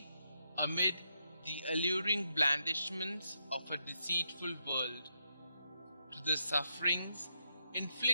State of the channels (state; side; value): inverted; both; correlation -0.80